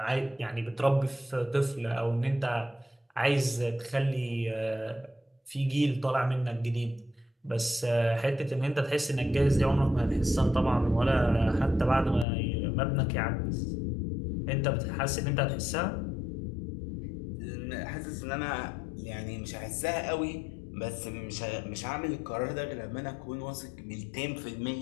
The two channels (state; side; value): drops out; right; at 12.2 s